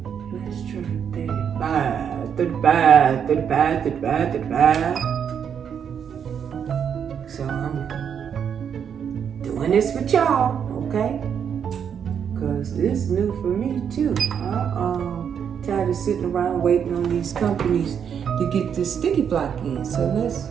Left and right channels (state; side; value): quieter; left; 7.8 dB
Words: Let's try 35. So I'm doing this with y'all, okay? Because this is new for me too. Tired of sitting around waiting on these companies to get this sticky block in. So let's